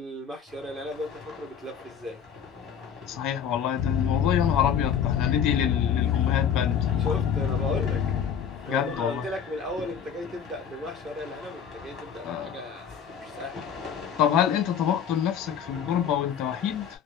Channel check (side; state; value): right; quieter; 8.0 dB